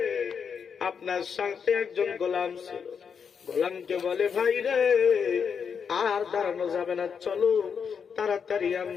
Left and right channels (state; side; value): quieter; right; 6.6 dB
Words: আপনার সাথে একজন গোলাম ছিল, গোলামকে বলে, ভাই রে আর দাঁড়ানো যাবে না, চলো তাড়াতাড়ি